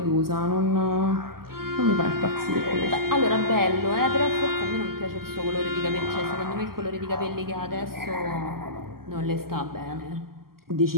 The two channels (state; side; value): late; left; 0.92 ms